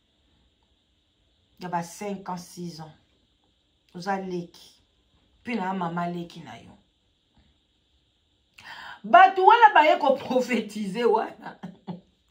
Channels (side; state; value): both; identical; correlation 1.00